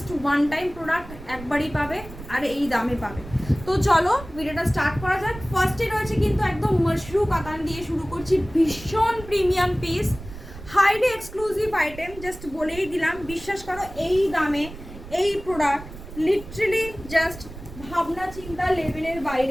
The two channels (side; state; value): right; noise; rumble, 15 dB below the sound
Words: ওয়ান টাইম প্রোডাক্ট, একবারই পাবে আর এই দামে পাবে। তো চলো ভিডিওটা স্টার্ট করা যাক। ফার্স্টে রয়েছে কিন্তু একদম মাশরু কাতান দিয়ে শুরু করছি, ভীষণ premium piece, highly exclusive item. Just বলেই দিলাম, বিশ্বাস করো এই দামে এই প্রোডাক্ট লিটারালি জাস্ট ভাবনা চিন্তা লেভেলের